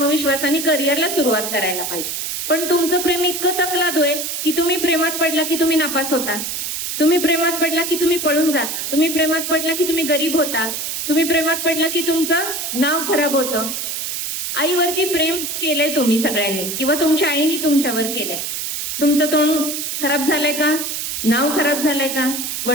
करिअरला सुरुवात करायला पाहिजे. पण तुमचं प्रेम इतकं तकलादू आहे की तुम्ही प्रेमात पडला की तुम्ही नापास होता, तुम्ही प्रेमात पडला की तुम्ही पळून जाता, तुम्ही प्रेमात पडला की तुम्ही गरीब होता, तुम्ही प्रेमात पडला की तुमचं नाव खराब होतं. आईवरती प्रेम केलंय तुम्ही सगळ्यांनी किंवा तुमच्या आईने तुमच्यावर केलंय. तुमचं तोंड खराब झालंय का? नाव खराब झालंय का?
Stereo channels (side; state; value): right; noise; hiss, 4 dB below the sound